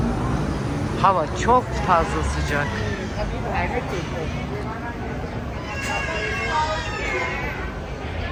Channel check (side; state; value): both; identical; correlation 1.00